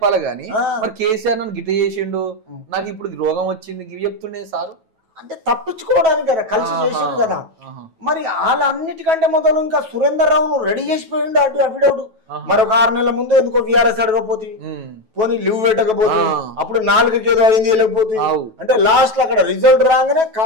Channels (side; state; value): left; late; 9.2 ms